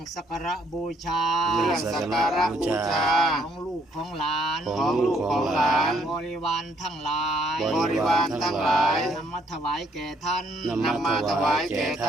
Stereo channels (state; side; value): normal; both; correlation 0.67